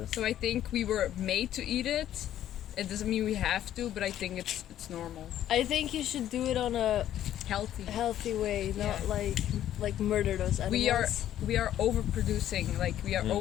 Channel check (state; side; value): quieter; right; 11.7 dB